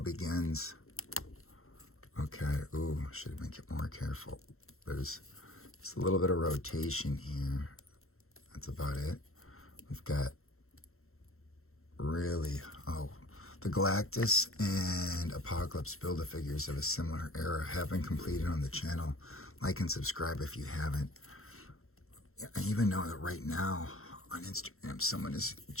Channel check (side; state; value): right; late; 0.62 ms